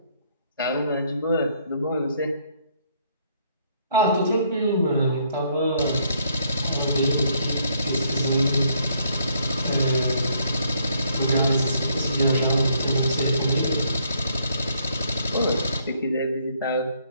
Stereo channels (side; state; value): both; inverted; correlation -0.69